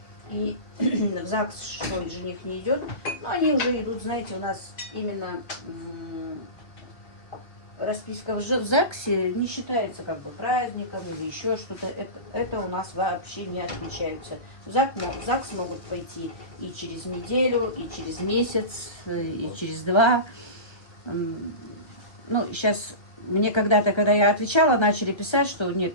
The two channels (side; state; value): right; late; 1.3 ms